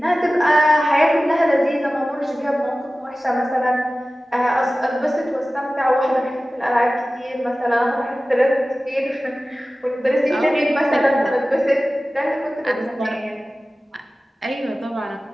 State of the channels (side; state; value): both; normal; correlation 0.96